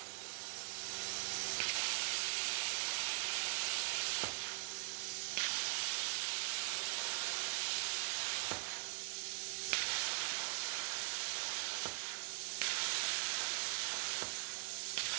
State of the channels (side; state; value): left; silent; digital silence